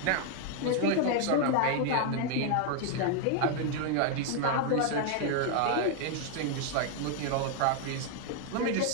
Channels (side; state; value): both; different; correlation 0.00